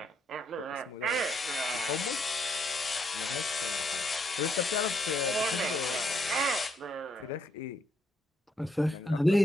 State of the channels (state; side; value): normal; both; correlation 0.74